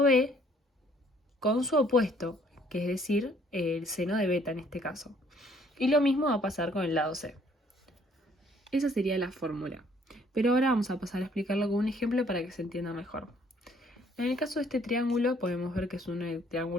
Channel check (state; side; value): normal; both; correlation 0.62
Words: B con su opuesto, que es decir, el seno de beta en este caso. Y lo mismo va a pasar con el lado C. Esa sería la fórmula. Pero ahora vamos a pasar a explicarlo con un ejemplo para que se entienda mejor. En el caso de este triángulo podemos ver que es un